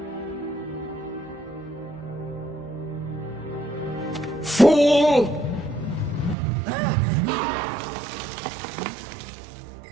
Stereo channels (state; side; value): drops out; left; at 6.4 s